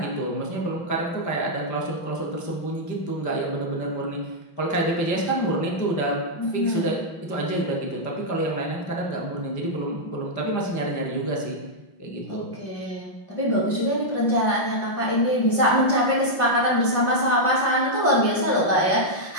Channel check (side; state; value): right; late; 5.8 ms